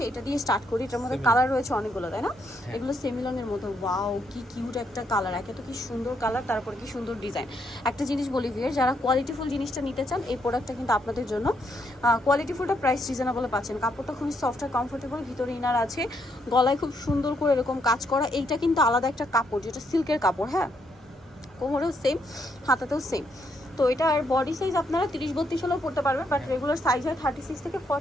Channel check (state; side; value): normal; both; correlation 0.75